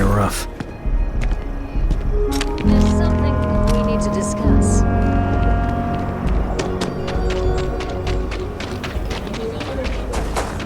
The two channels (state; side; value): identical; both; correlation 1.00